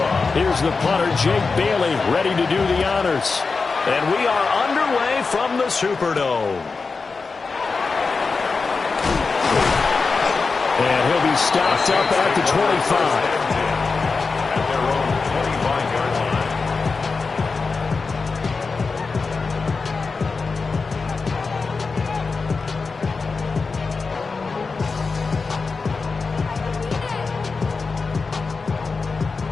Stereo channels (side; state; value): right; quieter; 4.5 dB